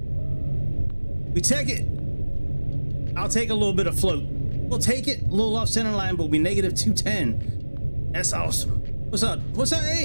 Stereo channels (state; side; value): inverted; both; correlation -1.00